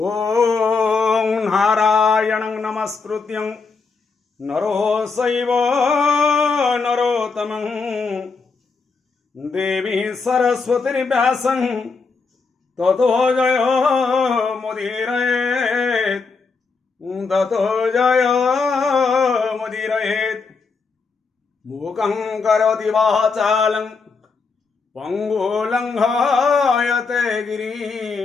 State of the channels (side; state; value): right; quieter; 4.6 dB